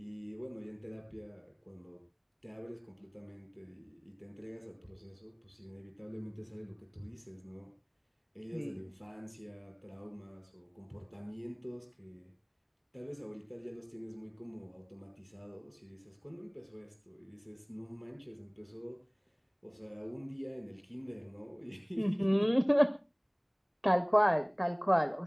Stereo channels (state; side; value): identical; both; correlation 1.00